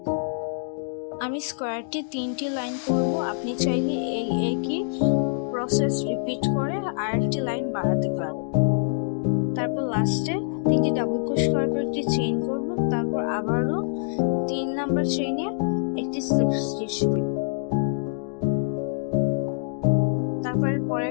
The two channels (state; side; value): silent; right; digital silence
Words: আমি স্কোয়ারটি 3টি লাইন করব। আপনি চাইলে এই একই প্রসেস রিপিট করে আরেকটি লাইন বাড়াতে পারেন। তারপর লাস্টে তিনটি ডাবল ক্রোশ করার পর একটি চেইন করব। তারপর আবারও 3 নাম্বার চেইনে একটি স্লিপ স্টিচ দিব। তারপরে